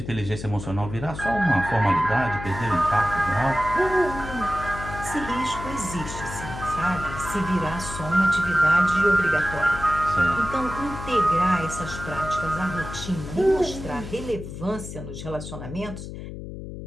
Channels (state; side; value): noise; left; hum, 10 dB below the sound